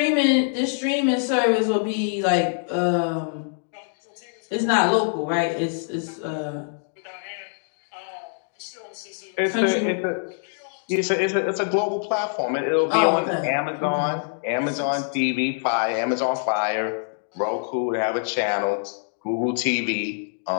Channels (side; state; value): right; silent; digital silence